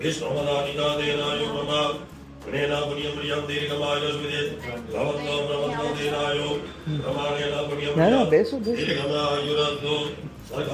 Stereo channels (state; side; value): identical; both; correlation 1.00